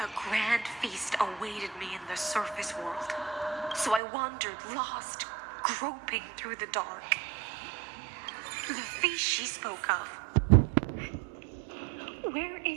grand feast awaited me in the surface world. So I wandered lost, groping through the dark. The feast she spoke of. Where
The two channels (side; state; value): left; drops out; at 4.0 s